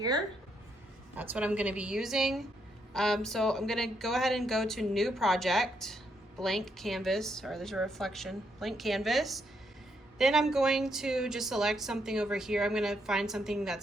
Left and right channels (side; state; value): both; normal; correlation 0.77